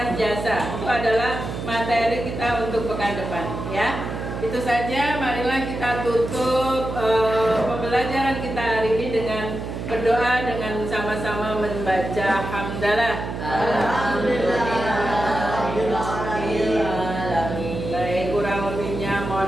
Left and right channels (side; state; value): right; noise; hum, 6 dB below the sound